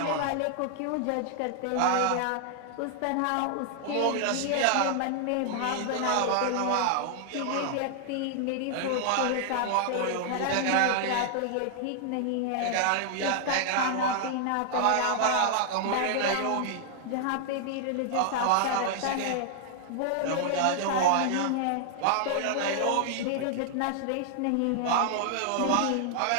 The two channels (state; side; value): different; both; correlation 0.00